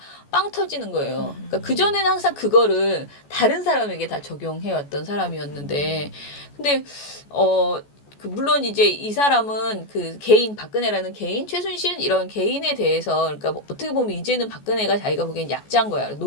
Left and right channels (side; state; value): right; late; 14 ms